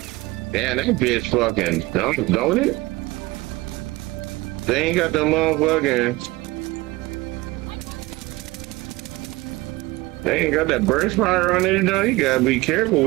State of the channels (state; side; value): quieter; left; 20.6 dB